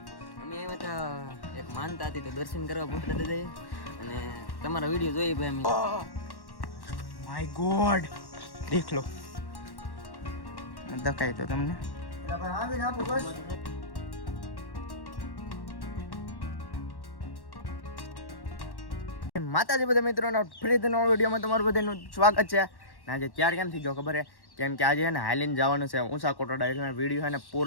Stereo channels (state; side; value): late; right; 1.1 ms